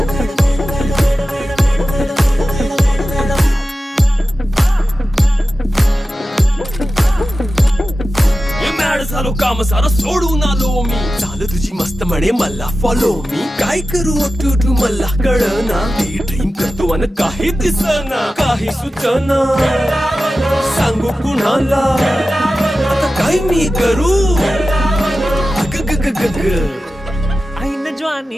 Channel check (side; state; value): both; normal; correlation 0.94